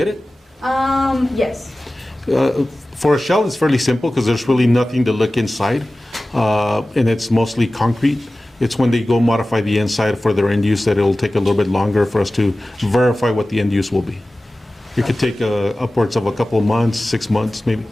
it? Yes. For a shell, it's fairly simple because there's really nothing to look inside, and it's mostly concrete. It's when they go modify the inside for their end use that it'll take a little bit longer for us to verify what the end use will be. It could take upwards of a couple of months, 6 months maybe.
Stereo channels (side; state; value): both; normal; correlation 0.96